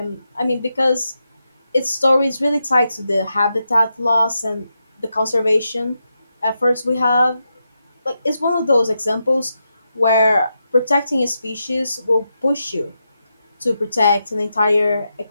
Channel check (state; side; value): inverted; both; correlation -0.86